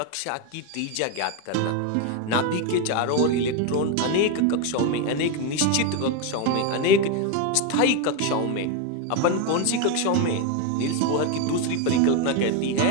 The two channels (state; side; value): different; both; correlation 0.02